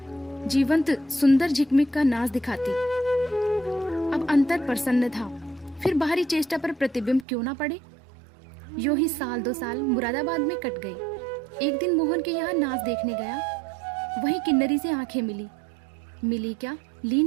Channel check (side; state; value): left; drops out; at 7.2 s